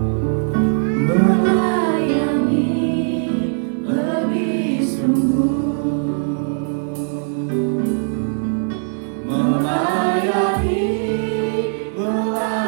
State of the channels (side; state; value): left; silent; digital silence